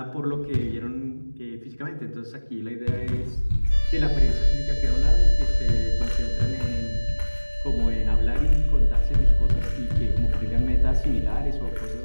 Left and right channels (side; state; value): both; inverted; correlation -1.00